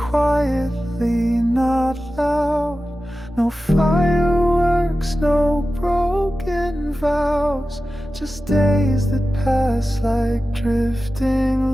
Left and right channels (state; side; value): normal; both; correlation 0.94